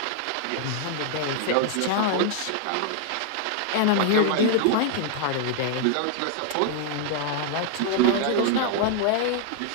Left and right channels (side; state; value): both; different; correlation 0.00